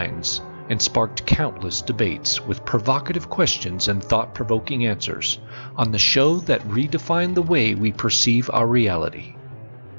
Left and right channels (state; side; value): inverted; both; correlation -1.00